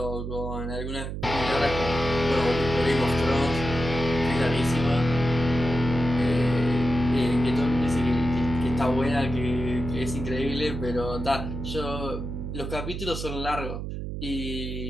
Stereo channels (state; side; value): noise; right; hum, 6 dB below the sound